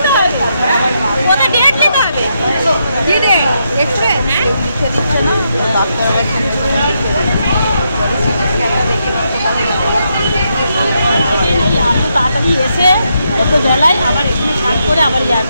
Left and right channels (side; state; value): both; inverted; correlation -0.81